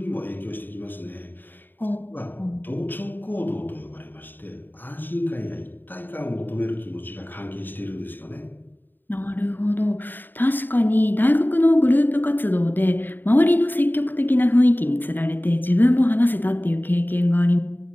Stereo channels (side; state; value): right; late; 0.092 ms